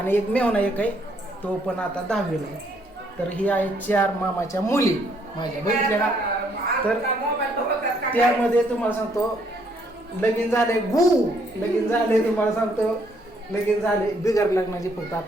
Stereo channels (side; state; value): both; normal; correlation 0.69